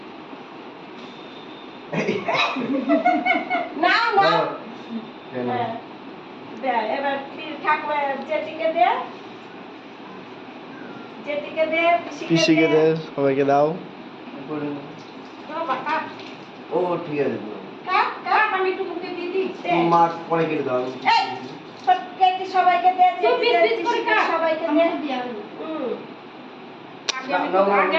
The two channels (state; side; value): identical; both; correlation 1.00